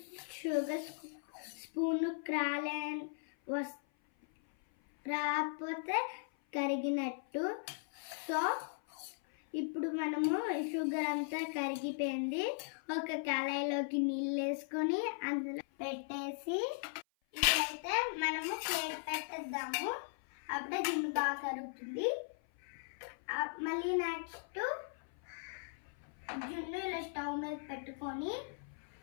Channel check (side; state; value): right; silent; 52 dB below the other